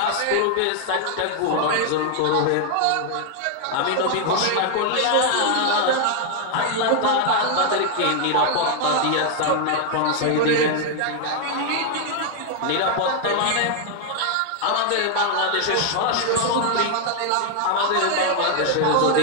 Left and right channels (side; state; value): both; different; correlation 0.00